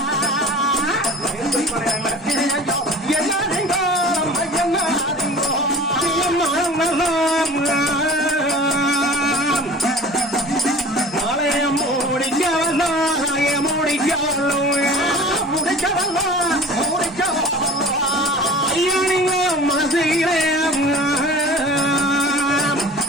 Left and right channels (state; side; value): normal; both; correlation 0.41